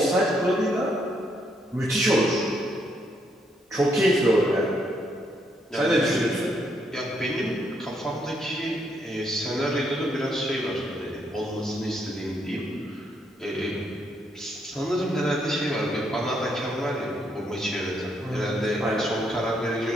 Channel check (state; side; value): normal; both; correlation 0.74